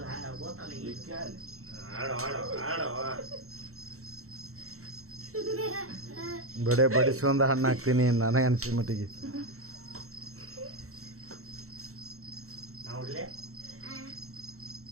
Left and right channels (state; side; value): late; left; 0.63 ms